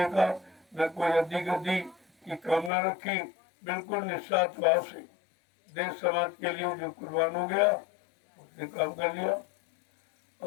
न कोई अद्दी गद्दी की कामना रखी, बिल्कुल निस्वार्थ भाव से देश समाज के लिए जो कुर्बान हो गया उसने काम कर लिया।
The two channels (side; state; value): right; drops out; at 2.7 s